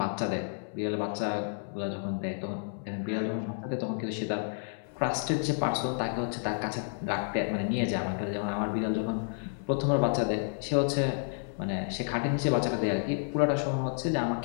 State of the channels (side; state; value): right; silent; 57 dB below the other